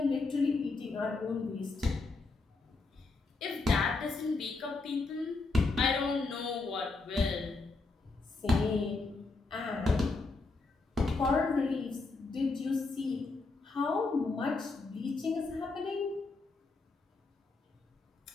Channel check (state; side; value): quieter; right; 3.7 dB